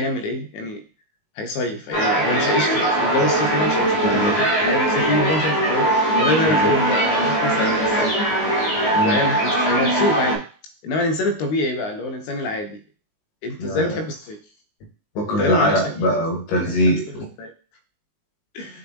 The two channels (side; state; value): right; late; 19 ms